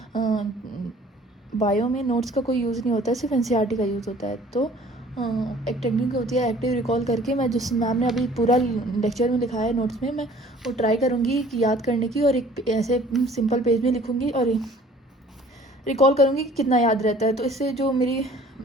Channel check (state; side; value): normal; both; correlation 0.52